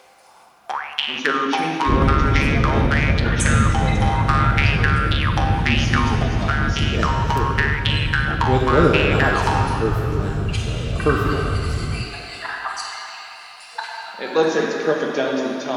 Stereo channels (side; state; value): both; identical; correlation 1.00